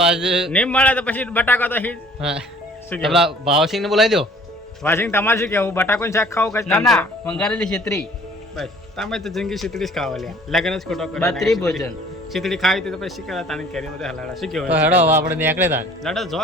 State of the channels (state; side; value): normal; both; correlation 0.53